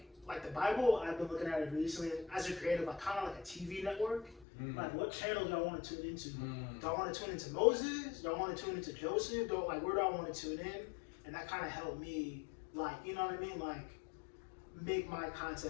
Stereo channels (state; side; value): drops out; right; at 4.5 s